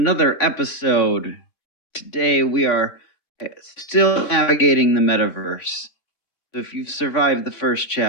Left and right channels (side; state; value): right; late; 3.5 ms